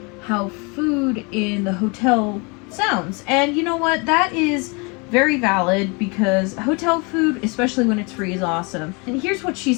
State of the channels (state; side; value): quieter; right; 30.4 dB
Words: how food in the hotel sounds. And you know what? That is very valid, because hotel food, especially when it's free, is awesome. And here's what she